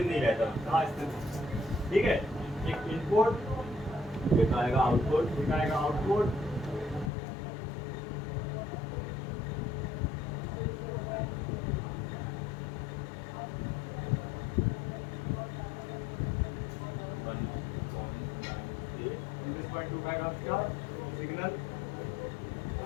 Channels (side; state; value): right; drops out; at 7.1 s